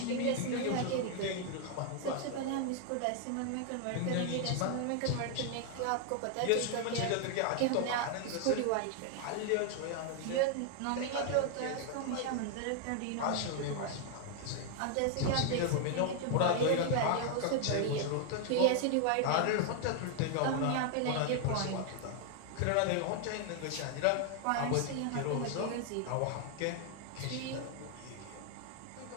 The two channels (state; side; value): different; both; correlation 0.00